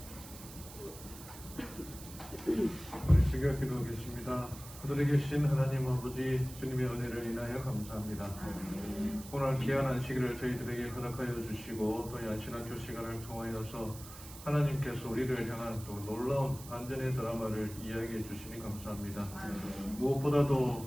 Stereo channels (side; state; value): right; noise; hiss, 15 dB below the sound